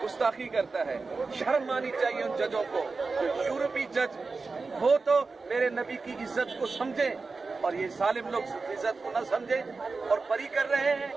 گستاخی کرتا ہے. شرم آنی چاہیے ان ججوں کو. یورپی جج ہو تو میرے نبی کی عزت کو سمجھیں اور یہ ظالم لوگ عزت کو نہ سمجھیں اور بری کر رہے ہیں.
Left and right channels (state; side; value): quieter; left; 4.1 dB